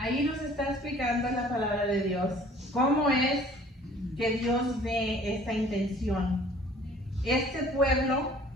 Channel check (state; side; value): normal; both; correlation 0.52